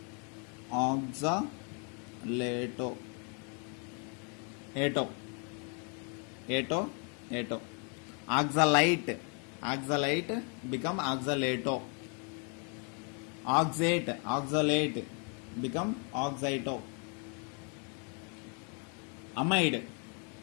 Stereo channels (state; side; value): quieter; right; 37.8 dB